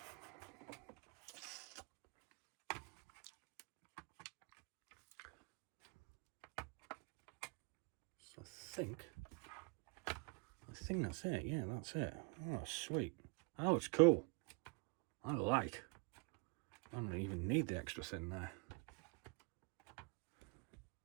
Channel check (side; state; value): left; quieter; 34.2 dB